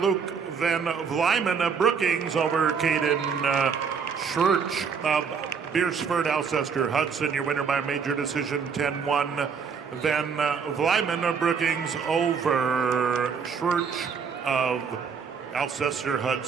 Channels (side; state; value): left; quieter; 6.2 dB